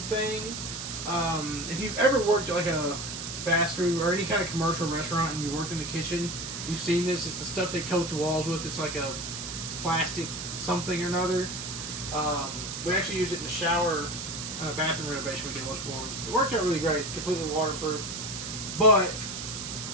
thing. If you've ever worked at like a fast food or any kind of commercial restaurant and you worked in the kitchen, you've seen this. It's the stuff they coat the walls with. It's like a plastic something or another. We actually used it in the shower on a bathroom renovation we did once before. It worked out really great, completely waterproof. But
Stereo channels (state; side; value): noise; right; hiss, 6 dB below the sound